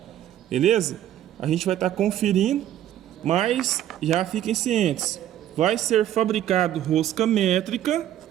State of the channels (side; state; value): left; quieter; 11.9 dB